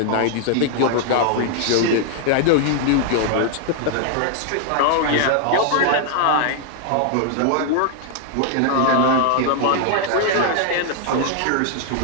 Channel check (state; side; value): different; both; correlation 0.00